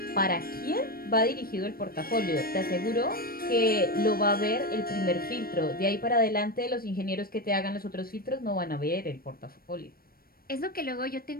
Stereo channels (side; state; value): right; late; 0.43 ms